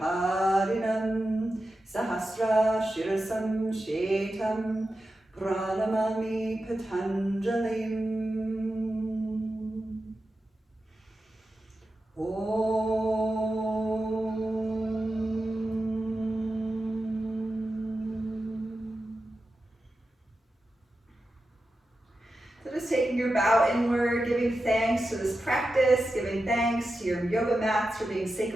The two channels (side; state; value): both; normal; correlation 0.91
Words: Sahasra Shirasam Shetam Pranamami Patanjalim. So just taking your bow inward, giving thanks to this practice, giving thanks to your yoga mats for being